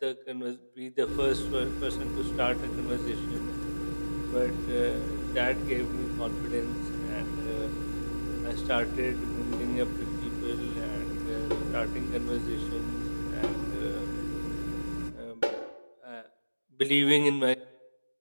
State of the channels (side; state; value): both; inverted; correlation -1.00